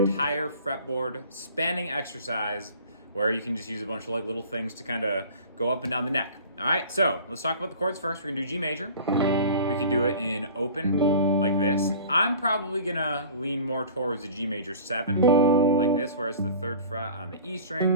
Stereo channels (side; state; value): both; inverted; correlation -0.43